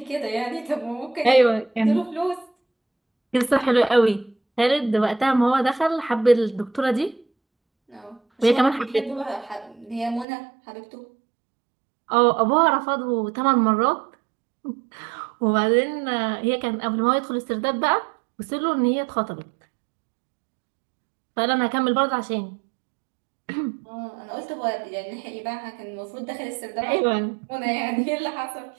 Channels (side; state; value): left; drops out; at 10.2 s